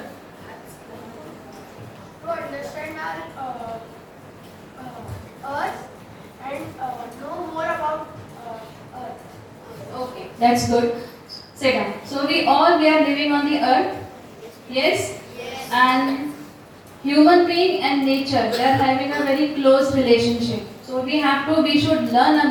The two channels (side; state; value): both; identical; correlation 1.00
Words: To understand our Earth and know more about Earth. Okay, that's good. Sit down. So we are living on the earth. Yes? Yes. And human being and nature, they are having a very close relationship. So we should learn